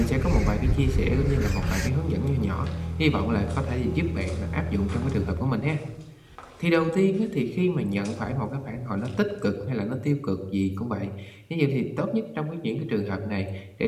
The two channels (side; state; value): both; identical; correlation 1.00